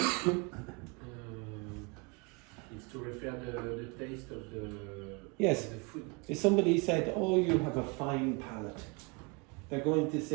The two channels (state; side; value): quieter; left; 30.1 dB